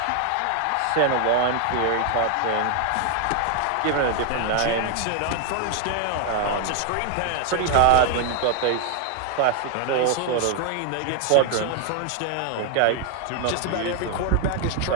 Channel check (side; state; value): both; different; correlation 0.00